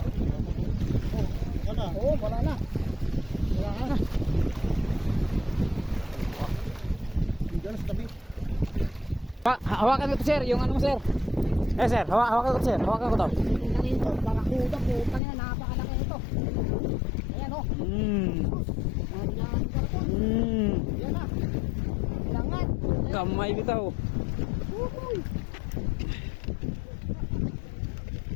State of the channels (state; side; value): drops out; right; at 15.2 s